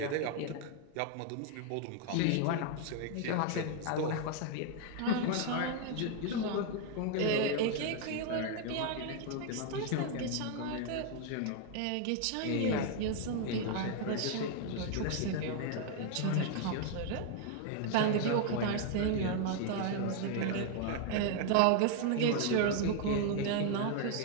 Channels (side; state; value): both; different; correlation 0.00